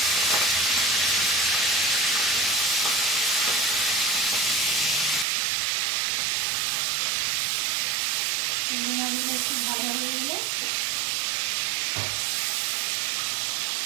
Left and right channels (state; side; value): drops out; left; at 5.2 s